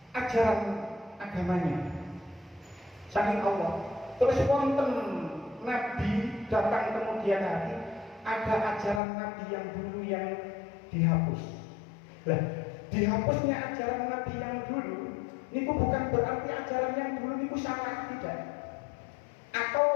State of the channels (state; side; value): drops out; right; at 9.0 s